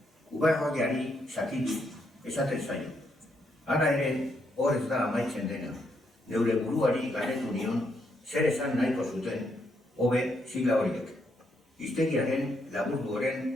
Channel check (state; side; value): normal; both; correlation 0.76